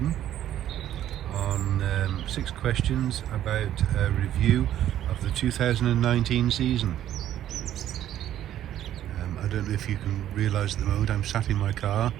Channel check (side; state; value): left; quieter; 11.8 dB